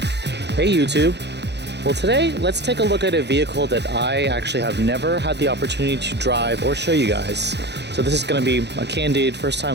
Hey YouTube! Well, today let's take a look at a vehicle that I actually have never had the opportunity to drive or show you guys. So this is going to be a candid first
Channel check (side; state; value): left; late; 0.50 ms